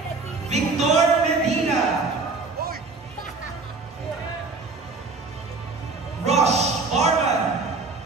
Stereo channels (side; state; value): left; quieter; 3.9 dB